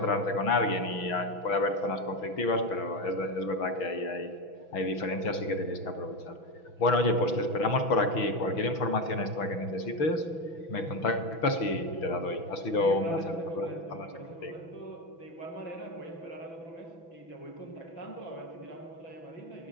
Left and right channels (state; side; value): late; right; 6.1 ms